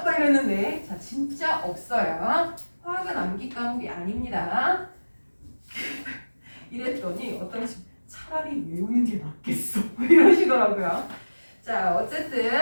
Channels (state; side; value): inverted; both; correlation -1.00